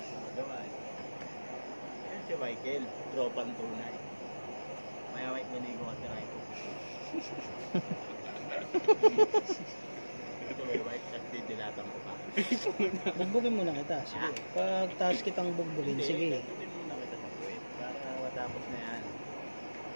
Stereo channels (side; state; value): both; inverted; correlation -1.00